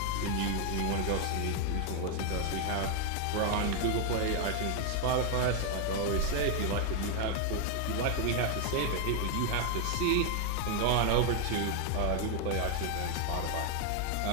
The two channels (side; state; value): both; different; correlation 0.00